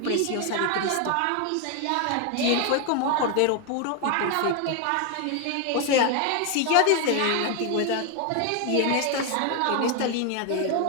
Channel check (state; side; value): different; both; correlation 0.01